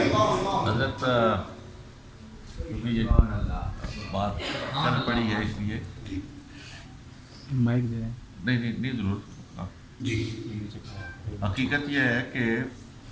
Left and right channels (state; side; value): identical; both; correlation 1.00